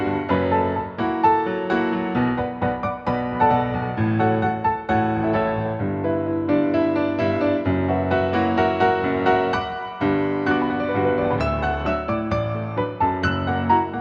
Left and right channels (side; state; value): both; identical; correlation 1.00